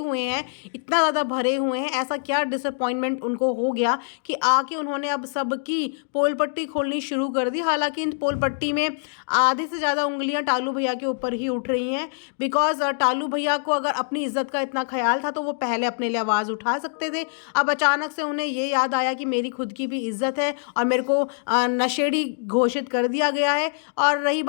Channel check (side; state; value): right; silent; digital silence